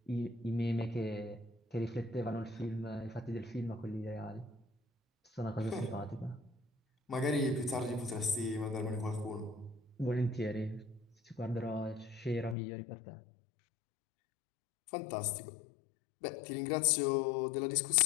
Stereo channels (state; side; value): drops out; right; at 12.6 s